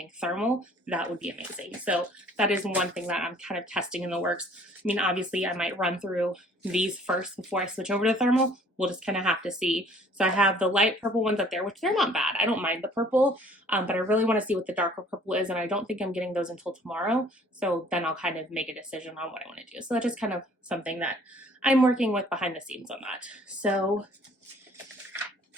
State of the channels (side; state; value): both; normal; correlation 0.55